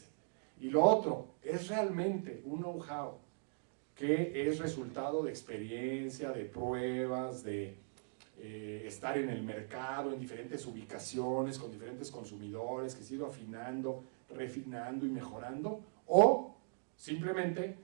Y lo otro, es realmente un know-how que es resultado de experiencia, de pruebas, de estar en el mercado, en diferentes ubicaciones, con diferentes consumidores, que se ha ido afinando, refinando y mejorando, o simplemente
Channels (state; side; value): silent; left; digital silence